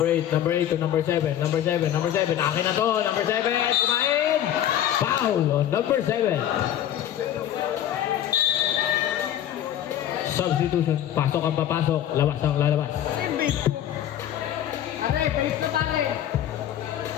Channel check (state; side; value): quieter; right; 11.2 dB